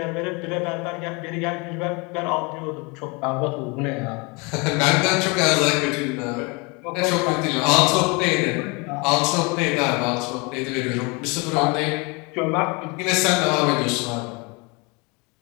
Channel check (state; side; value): quieter; right; 29.0 dB